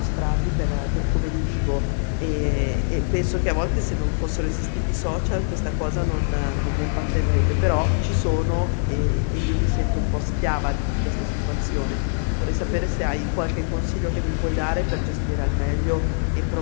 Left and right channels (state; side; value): silent; right; digital silence